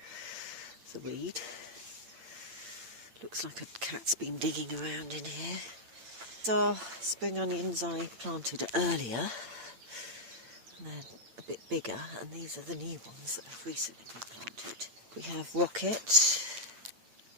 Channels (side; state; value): left; late; 8.8 ms